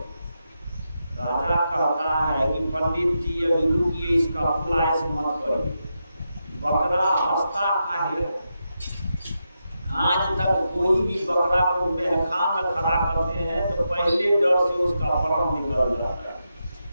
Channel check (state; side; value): inverted; both; correlation -0.86